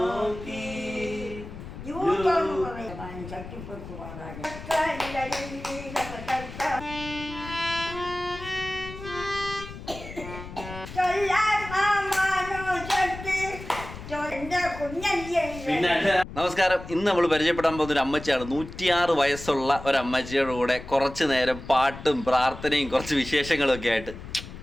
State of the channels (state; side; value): noise; left; rumble, 12 dB below the sound